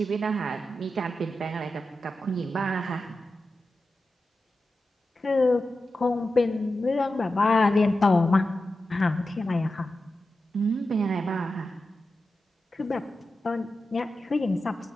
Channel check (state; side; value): normal; both; correlation 0.92